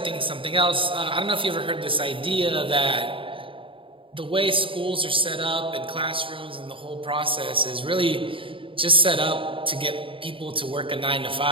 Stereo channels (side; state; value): left; late; 0.25 ms